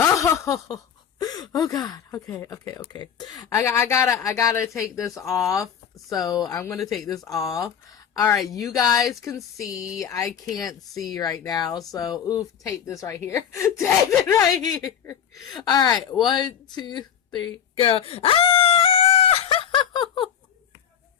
God. Okay. I gotta take this off. So I'm gonna take this off. All right, you guys can see. I can't see right now. So oof, tape this right here. Tape it right here. All right, 1, 2, 3, go. Ah!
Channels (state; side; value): quieter; right; 8.6 dB